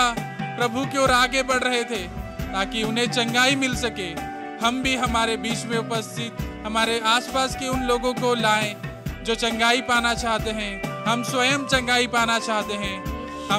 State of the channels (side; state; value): both; identical; correlation 1.00